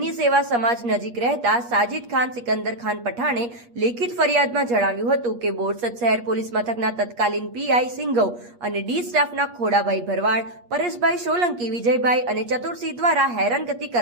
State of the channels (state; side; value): late; left; 8.4 ms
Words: સેવા સમાજ નજીક રહેતા સાજિદ ખાન સિકંદર ખાન પઠાણે લેખિત ફરિયાદમાં જણાવ્યું હતું કે બોરસદ શહેર પોલીસ મથકના તત્કાલીન પીઆઈ સિંઘવ અને ડી સ્ટાફના ખોડાભાઈ ભરવાડ, પરેશભાઈ સોલંકી, વિજયભાઈ અને ચતુરસિંહ દ્વારા હેરાનગતિ